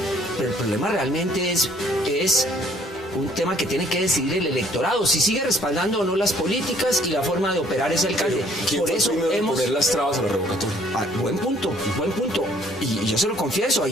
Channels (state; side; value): normal; both; correlation 0.60